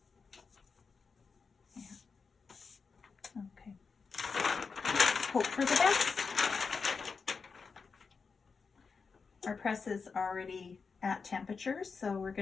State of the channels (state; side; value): quieter; right; 5.1 dB